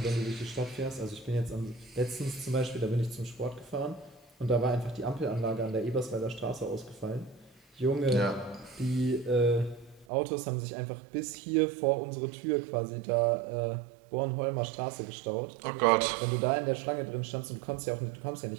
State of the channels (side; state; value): left; drops out; at 10.1 s